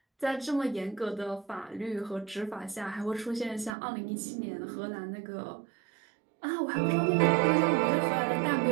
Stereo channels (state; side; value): drops out; left; at 3.7 s